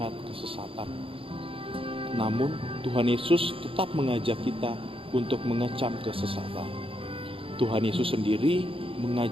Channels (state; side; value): late; left; 0.26 ms